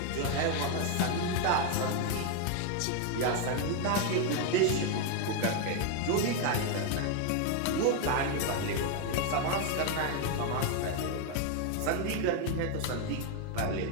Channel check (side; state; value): both; different; correlation 0.01